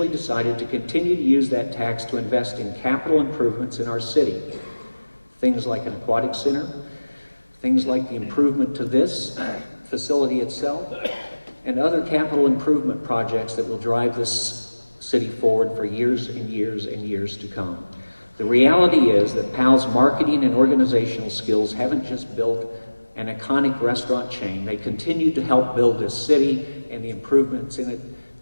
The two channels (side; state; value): both; inverted; correlation -1.00